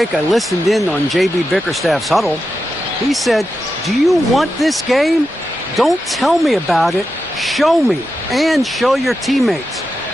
I listened in on J.B. Bickerstaff's huddle. He said, "Do you want this game? Don't tell me about it. Show me and show your teammates.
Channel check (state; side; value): normal; both; correlation 0.89